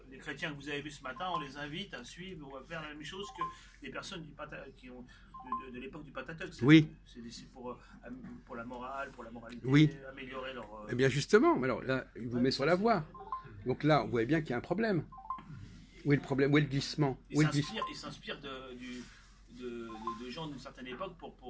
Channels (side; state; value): both; identical; correlation 1.00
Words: Les chrétiens que vous avez vus ce matin, on les invite à suivre ou à faire la même chose que les personnes de l'époque du Pentateuque. Oui. C'est pour la morale, pour la moralité, oui. améliorer leur... Eh bien justement, alors là, il vous met sur la voie. Donc là, on voit bien qu'il y a un problème. Où est le problème? Où est le glissement? Il s'inspire de gens d'une certaine époque